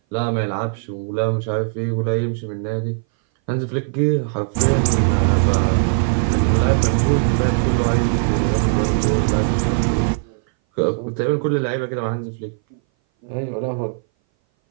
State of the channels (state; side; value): silent; left; 60 dB below the other